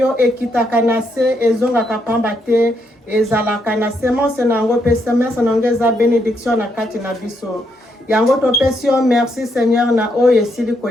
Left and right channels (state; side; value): normal; both; correlation 0.77